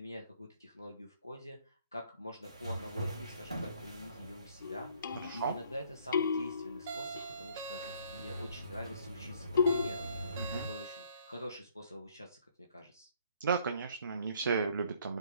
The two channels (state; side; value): inverted; both; correlation -0.63